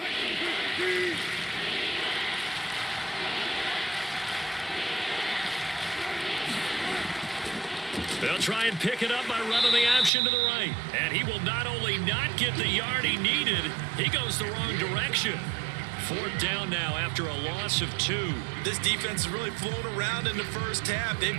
They'll try and pick it up by running the option to the right. And he will not only not get the yard he needed, he goes the wrong direction. Fourth down now after a loss of 2. This defense has really flown around in the first half. They've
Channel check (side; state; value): left; drops out; at 10.1 s